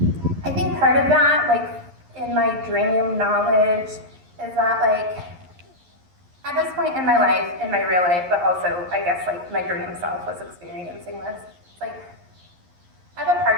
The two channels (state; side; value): late; left; 11 ms